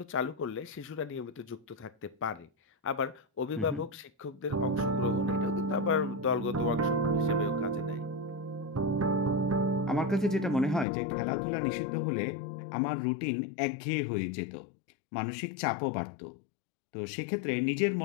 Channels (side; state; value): right; drops out; at 10.9 s